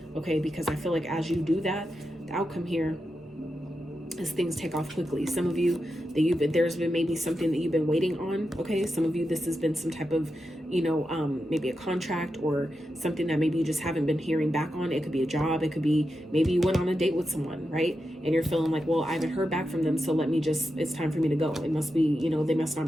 Okay, because I feel like as you do that, the outcome here is things take off quickly. Some of you, there's been maybe something that you've been waiting on. Okay, some of you, this has been some type of, you know, maybe a contract or something that maybe you just haven't been hearing back on. It could be a job. It could be maybe you went on a date with someone, right? And you're feeling like, well, I haven't heard back from them, so let me just, it's time for me to go. It must be, you know, they must not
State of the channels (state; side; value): normal; both; correlation 0.88